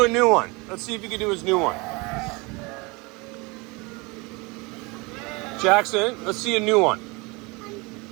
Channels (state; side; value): quieter; left; 26.4 dB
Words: a new one. Let's see if he can do his new one. Jackson, let's see a new one.